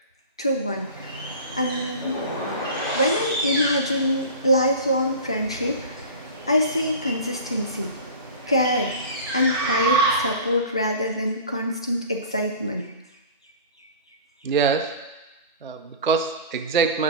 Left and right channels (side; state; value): both; inverted; correlation -0.38